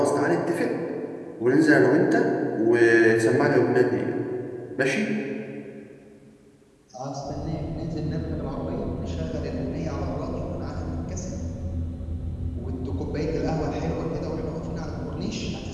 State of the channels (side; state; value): both; identical; correlation 1.00